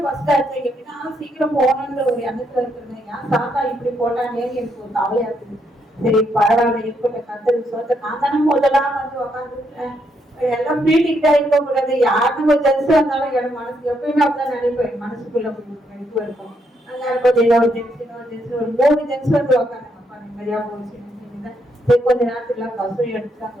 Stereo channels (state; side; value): normal; both; correlation 0.76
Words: பஸ் ஆச்சு எப்படின்னா சீக்கிரம் போகணுன்ற ஒரு எண்ணத்துல இருக்கிறது. ஏன் சாத்தா இப்படி போட்டானே எனக்கு ஒரு கவலையா இருக்குது. சரி பரவாயில்ல இருக்கட்டும், கத்தருக்கு சொல்ல நான் தானே முதலாம் வந்து உட்காந்துருக்கேன். எல்லாம் பீட்டிக்கிட்டா இருக்க கூடாது. யாருக்கும் ஒரு ஜென்ஸ் வந்தாலும் என் மனசு எப்பயுமே அப்படிதான் நினைப்பேன். மனசுக்குள்ள இது இருக்கும். அங்க கொஞ்சம் ஒரு ஜென்ஸ் ஒரு 3 ஜென்ஸ் வந்து உட்காந்து அப்பா நிம்மதியா போச்சு. கொஞ்ச நேரத்துல பஸ்ஸும் எடுத்துட்டாங்க.